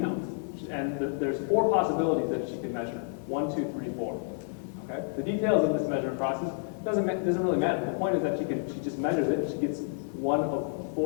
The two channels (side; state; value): right; silent; digital silence